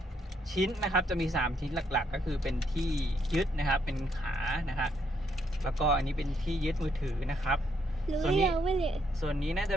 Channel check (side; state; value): both; normal; correlation 0.73